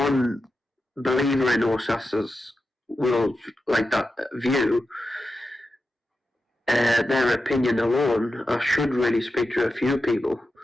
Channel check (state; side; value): normal; both; correlation 0.90